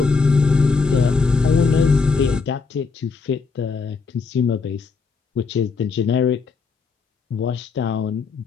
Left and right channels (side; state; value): right; quieter; 4.7 dB